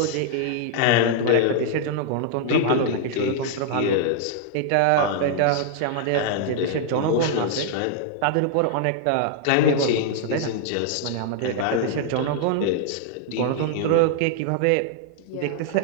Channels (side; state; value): both; different; correlation -0.01